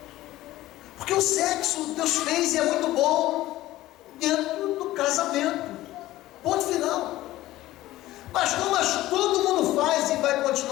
Porque o sexo Deus fez e é muito bom dentro do casamento. Ponto final. Mas todo mundo faz e vai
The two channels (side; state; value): right; quieter; 16.0 dB